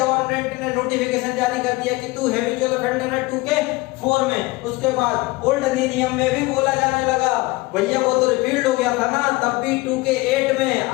ने नोटिफिकेशन जारी कर दिया कि तू हैबिचुअल ऑफेंडर है 2 के 4 में। उसके बाद ओल्ड अधिनियम में भी बोला जाने लगा, भैया वो तो रिपील्ड हो गया था ना, तब भी 2 के 8 में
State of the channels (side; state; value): right; quieter; 22.1 dB